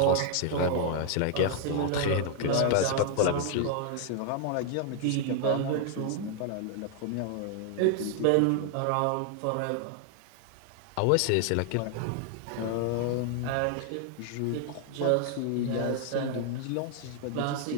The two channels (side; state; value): both; different; correlation 0.00